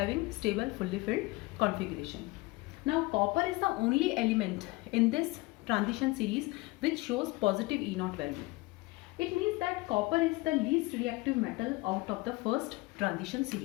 stable fully filled configuration. Now copper is the only element in this transition series which shows positive E0 value. It means that copper is the least reactive metal out of the first transition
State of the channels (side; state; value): right; quieter; 22.3 dB